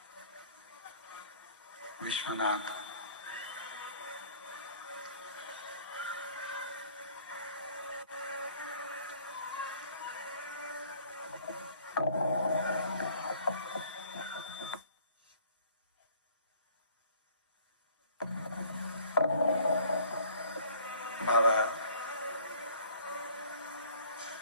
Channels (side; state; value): both; inverted; correlation -0.55